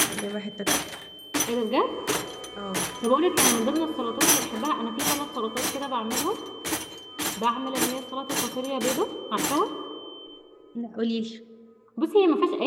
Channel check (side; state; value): both; identical; correlation 1.00